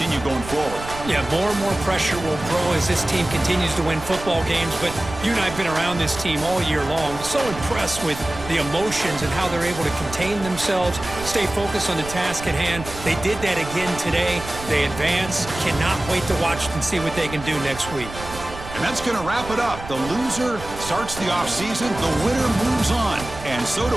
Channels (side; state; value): right; noise; rumble, 12 dB below the sound